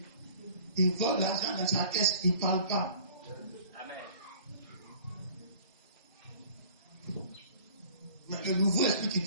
Il vole l'argent dans sa caisse, il ne parle pas. Amen. Mais le nouveau esprit qui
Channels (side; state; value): both; inverted; correlation -0.48